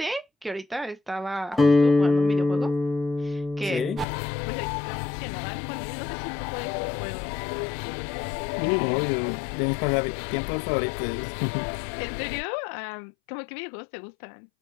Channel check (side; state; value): right; drops out; at 4.0 s